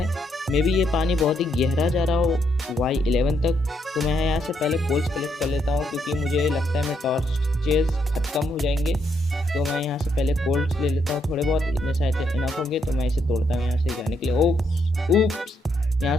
मे बी ये पानी बहुत ही गहरा जा रहा हो Y11 तक। तो मैं यहाँ से पहले कोल्स कलेक्ट कर लेता हूँ क्योंकि मुझे लगता है मैं टॉर्चेस ख़त्म हो जाएंगे। तो मैं यहाँ से पहले कोल्स ले लेता हूँ, थोड़े बहुत इतने शायद इनफ होंगे। तो मैं इसे तोड़ता हूँ यहाँ से जाने के लिए। ओप्स यहाँ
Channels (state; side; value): normal; both; correlation 0.76